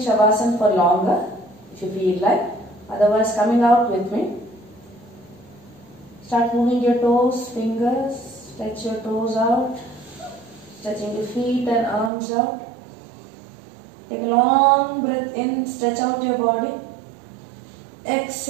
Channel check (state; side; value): drops out; left; at 12.1 s